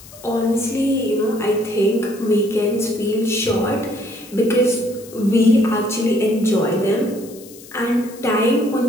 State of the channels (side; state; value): left; noise; hiss, 20 dB below the sound